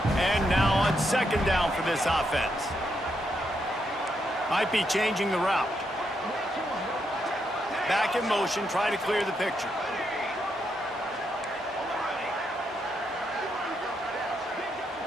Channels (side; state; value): both; normal; correlation 0.80